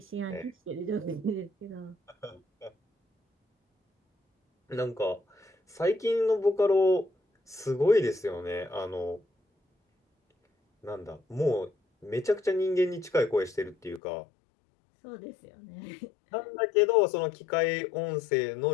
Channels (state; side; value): drops out; right; at 14.0 s